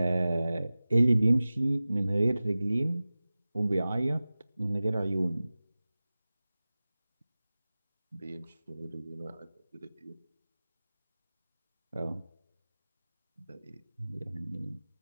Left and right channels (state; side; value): inverted; both; correlation -0.97